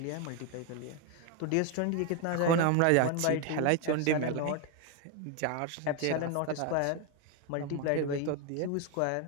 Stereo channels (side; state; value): both; different; correlation 0.01